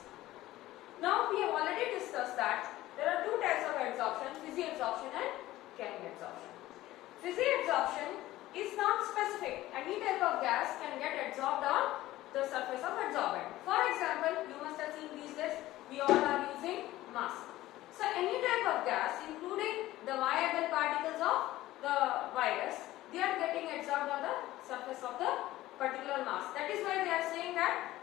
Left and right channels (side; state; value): right; quieter; 16.1 dB